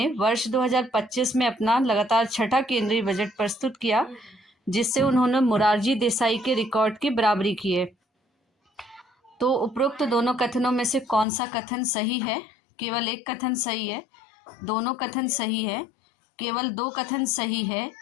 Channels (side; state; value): right; drops out; at 11.2 s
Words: वर्ष 2025 में अपना लगातार छठा केंद्रीय बजट प्रस्तुत किया, जिससे उन्होंने मोरारजी देसाई के रिकॉर्ड की बराबरी की है। तो उपरोक्त दोनों कथनों में से कौन सा कथन सही है? केवल एक कथन सही है, दोनों कथन सही है, केवल दो कथन सही है,